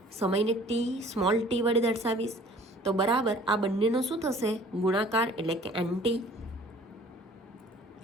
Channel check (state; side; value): normal; both; correlation 0.51